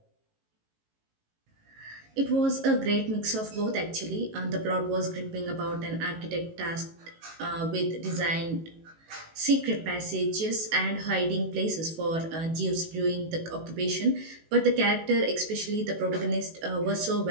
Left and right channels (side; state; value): left; late; 18 ms